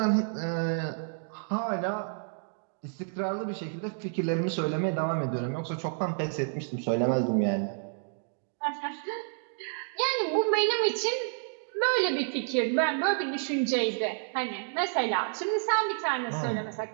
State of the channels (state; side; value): silent; left; digital silence